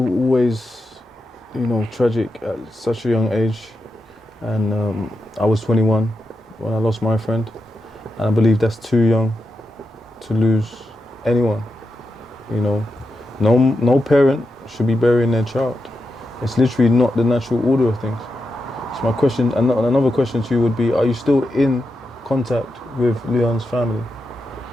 you know, tragic at such a young age. And I was 21 when I lost my friend. And I believe that's too young to lose anyone. You know, no parent should be burying their child. It's literally not the natural order of things. So my question, another question to you would be, are you still in contact with Leon's family?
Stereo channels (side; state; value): both; normal; correlation 0.87